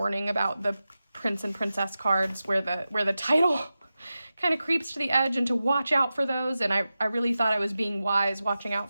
about the prince and princess cards where the title kind of creeps to the edge and to watch out for those. And I really thought I was being wise watching out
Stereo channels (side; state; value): both; inverted; correlation -0.93